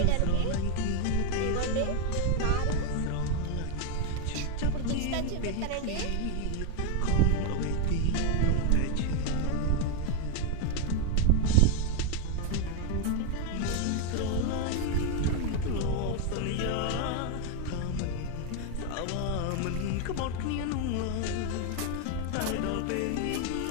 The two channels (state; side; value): different; both; correlation 0.01